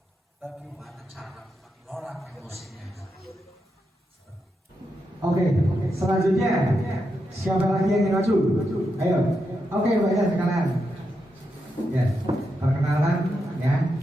Bagaimana cara mengelola emosinya? Oke, selanjutnya siapa lagi yang ingin maju? Ayo. Oke, Mbak ya sekalian. Ya, perkenalan ya.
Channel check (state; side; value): normal; both; correlation 0.85